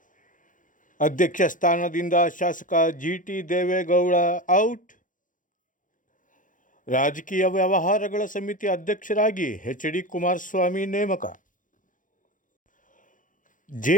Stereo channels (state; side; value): late; right; 0.38 ms